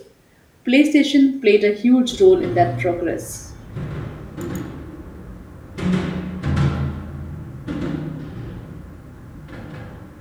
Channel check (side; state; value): both; identical; correlation 1.00